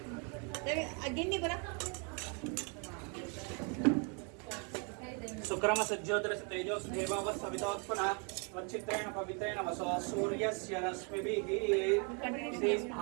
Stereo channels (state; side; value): quieter; left; 36.0 dB